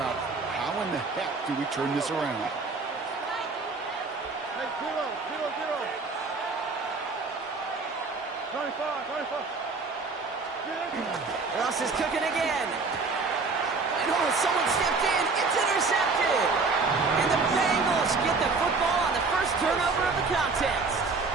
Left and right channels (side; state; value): left; quieter; 4.2 dB